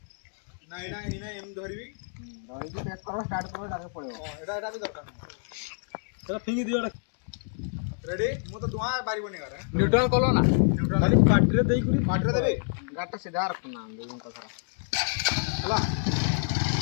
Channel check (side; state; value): right; silent; 59 dB below the other